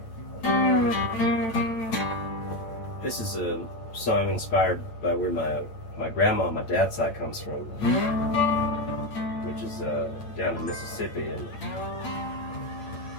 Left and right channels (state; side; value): late; right; 8.8 ms